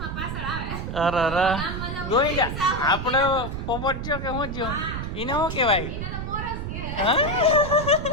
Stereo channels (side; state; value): right; noise; rumble, 5 dB below the sound